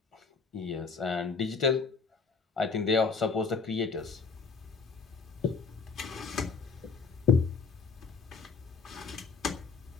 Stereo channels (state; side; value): quieter; right; 5.0 dB